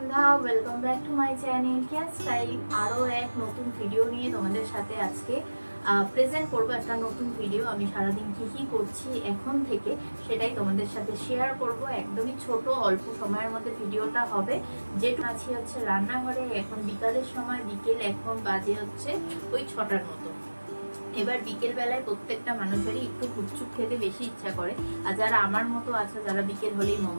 welcome back to my channel care style. আরও এক নতুন ভিডিও নিয়ে তোমাদের সাথে আজকে প্রেজেন্ট করবো একটা নতুন ভিডিও। আমি সারাদিন কী করছি এখন থেকে সেটাই তোমাদের সাথে শেয়ার করব। একদমই ছোট অল্প সময়ের মধ্যে ভিডিওটা হবে। যেটু আছি হচ্ছে রান্নাঘরে, এখন বিকালের সময়, বিকেল এখন বাজে হচ্ছে ওই 6টার মতো। এবার বিকেল বেলায় প্রত্যেকটা মানুষেরই একটু গুপচুপ খেতে বেশি ইচ্ছা করে। আর যারা আমার মতো আছে, যারা বিকেল হলেই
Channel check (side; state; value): both; inverted; correlation -1.00